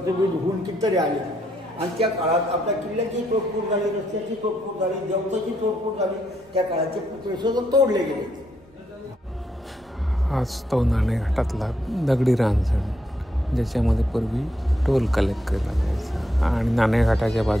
होऊन कितीतरी आले आणि त्या काळात आपल्या किल्ल्याची तोडफोड झाली, रस्त्याची तोडफोड झाली, देवताची तोडफोड झाली. त्या काळाचे पुतळे सुद्धा तोडले गेले. आज तो नाणेघाटातला दगडी रांजण ज्याच्यामध्ये पूर्वी टोल कलेक्ट केला जायचा आणि नाणेघाटाच्या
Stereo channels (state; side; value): normal; both; correlation 0.77